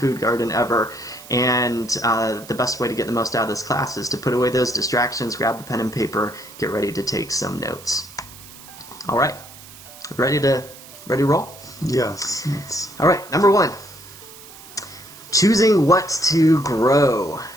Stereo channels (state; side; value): noise; right; hiss, 18 dB below the sound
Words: garden ever. And the best way to get the most out of this class is to put away those distractions, grab the pen and paper, get ready to take some notes. All right. Ready to roll? Yes. All right, number 1. Choosing what to grow.